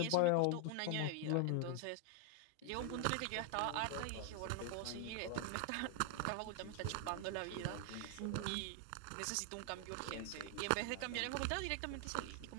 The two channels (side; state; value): both; different; correlation 0.00